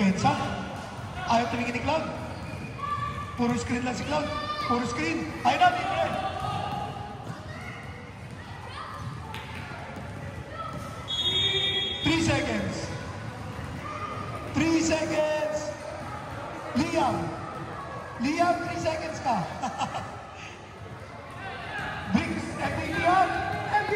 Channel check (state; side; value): identical; both; correlation 1.00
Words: Ayaw tumingin ni Cloud. Puro screen lang si Cloud. Puro screen. Ayaw na, libre. Three seconds. Liam, 3 seconds ka.